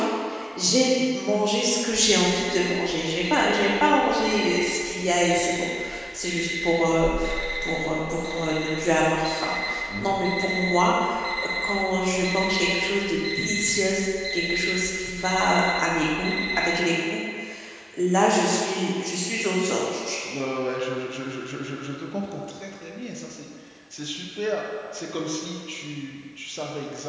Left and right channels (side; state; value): both; identical; correlation 1.00